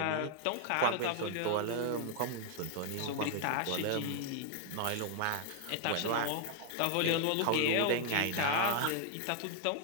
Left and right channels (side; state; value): both; different; correlation 0.00